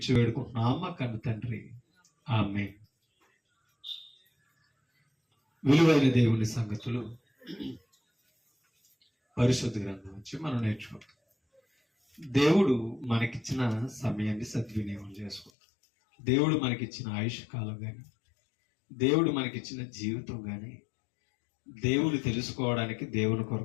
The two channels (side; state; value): right; drops out; at 15.5 s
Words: వేడుకుంటున్నామా కన్ను తండ్రి, ఆమేన్. విలువైన దేవుని సంగతులు పరిశుద్ధ గ్రంథం నుంచి మనం నేర్చుకుంటాం. దేవుడు మనకిచ్చిన సమయాన్ని సద్వినియోగం చేసుకుంటాం. దేవుడు మనకిచ్చిన ఆయుష్ కాలం కానీ దేవుడు మనకిచ్చిన జీవితం కానీ దేవుని తెలుసుకోవడానికి దేవుని